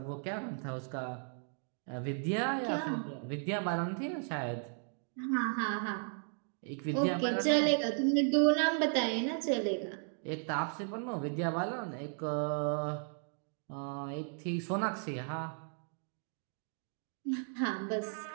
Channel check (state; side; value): silent; left; 54 dB below the other